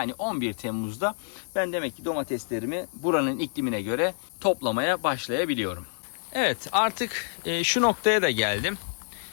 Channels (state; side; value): silent; right; digital silence